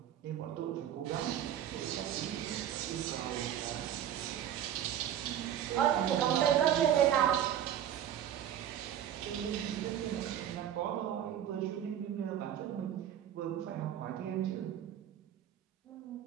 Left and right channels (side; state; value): left; quieter; 10.4 dB